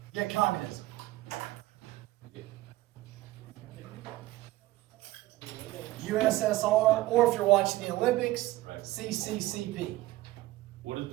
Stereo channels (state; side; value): quieter; left; 17.6 dB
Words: Yeah, communism. USSR, or if you're watching the Olympics, CCCP. What is